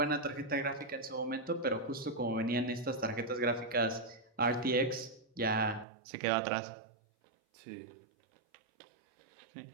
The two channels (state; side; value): drops out; left; at 5.9 s